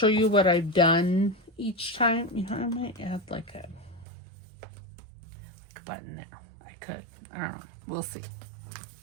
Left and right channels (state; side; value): drops out; left; at 4.0 s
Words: you what I've done each time. You know, I might add like a button there. I could. I don't know. We'll see.